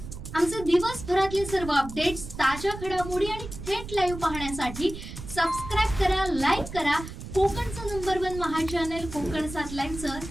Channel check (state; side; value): noise; right; rumble, 10 dB below the sound